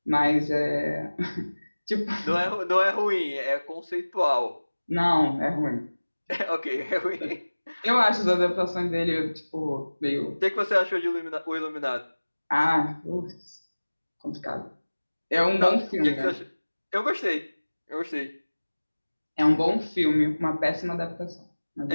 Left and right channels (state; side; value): inverted; both; correlation -1.00